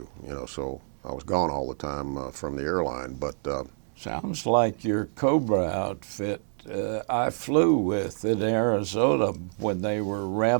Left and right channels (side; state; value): left; silent; digital silence